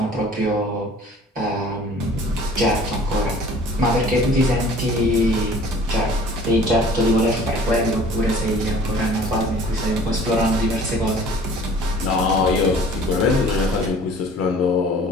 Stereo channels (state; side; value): normal; both; correlation 0.49